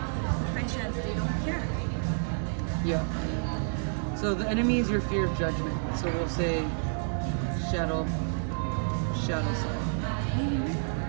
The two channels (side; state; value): left; silent; digital silence